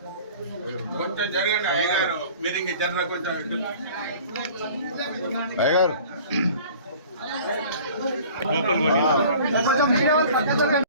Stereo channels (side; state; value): both; inverted; correlation -0.46